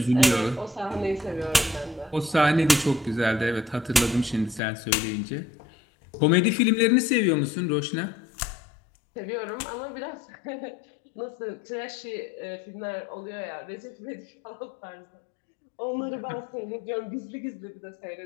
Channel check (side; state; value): right; drops out; at 4.6 s